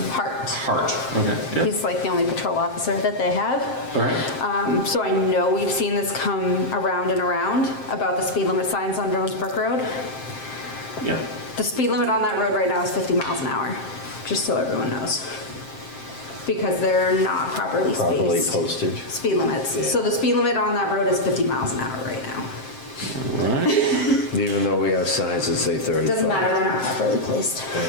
Hart. Hart, okay, yeah, He's like the only patrol officer that they have. all right. So I know we've seen this come around and around about the speed limit signs on Jonesbrook Road. Yeah, The speed limit on that road right now is 50 miles an hour, just so everyone knows. Because they're not properly Properly spaced. posted. Speed limits. Yeah. So the speed limit on that road is 50 miles an hour right now. all right. even though we have signs that say 35? Doesn't matter, they're not properly placed.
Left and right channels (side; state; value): right; late; 7.6 ms